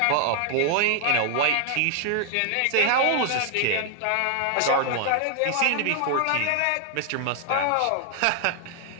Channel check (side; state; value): both; different; correlation 0.00